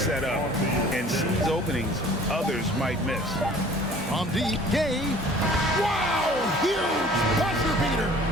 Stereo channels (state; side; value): normal; both; correlation 0.50